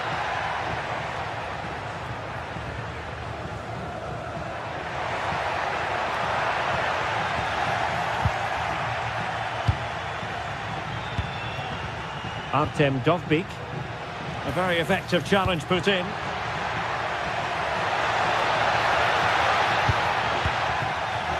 Artem Dovbyk. A very effective challenge put in.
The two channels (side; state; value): both; identical; correlation 1.00